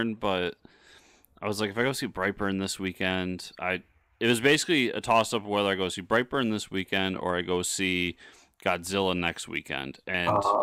but I was like, if I go see Brightburn this weekend, it was basically a toss-up whether I go see Brightburn this weekend or I go see Godzilla next weekend. And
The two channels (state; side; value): identical; both; correlation 1.00